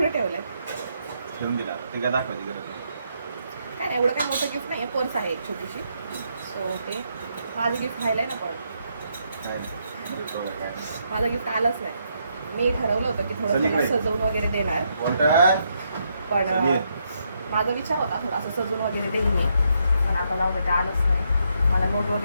ठेवलं आहे ठेवून दिला. ते काय दाखवायची गरज नाही. काय नाही एवढं काय मोठं गिफ्ट नाही आहे. पर्स आहे एक छोटीशी. सो ते माझं गिफ्ट व्हायला आहे ना. पण काय नाही. माझं गिफ्ट आलंच नाही. मी ठरवलं होतं की थोडं त्याला सजवून वगैरे देणार, पण माझा विचार होता थोडा असं सजवून वगैरे देईल मी. पण आता जाऊ दे, ते आलंच नाही. मला नोट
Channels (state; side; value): inverted; both; correlation -0.77